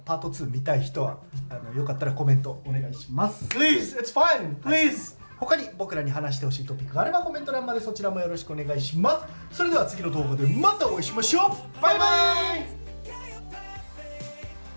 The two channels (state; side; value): inverted; both; correlation -1.00